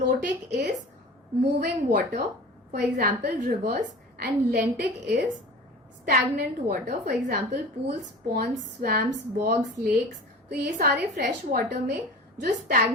is moving water, for example reverse, and lentic is stagnant water, for example pools, ponds, swamps, bogs, lakes. तो ये सारे fresh water में जो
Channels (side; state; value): both; normal; correlation 0.37